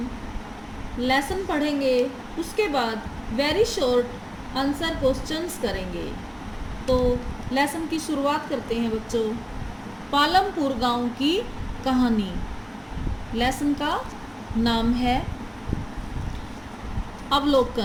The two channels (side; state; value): both; identical; correlation 1.00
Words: लेसन पढ़ेंगे, उसके बाद वेरी शॉर्ट आंसर क्वेश्चंस करेंगे। तो लेसन की शुरुआत करते हैं बच्चों। पालमपुर गांव की कहानी। लेसन का नाम है